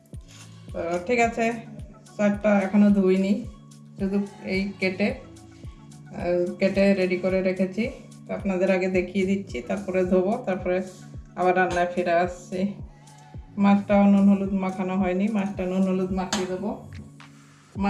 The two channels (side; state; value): both; identical; correlation 1.00